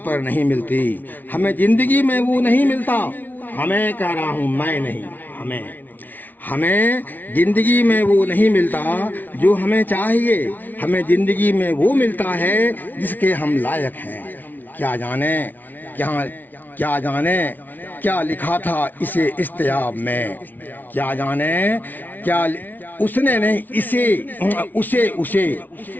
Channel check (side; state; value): right; late; 0.084 ms